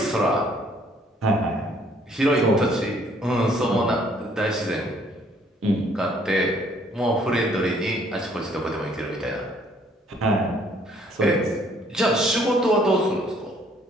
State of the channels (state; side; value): normal; both; correlation 0.62